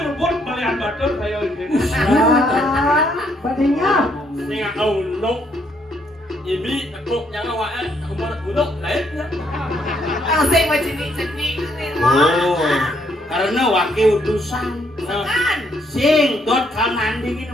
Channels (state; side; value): normal; both; correlation 0.71